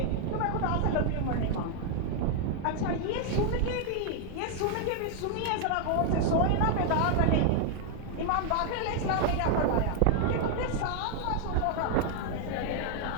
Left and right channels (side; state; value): both; different; correlation 0.00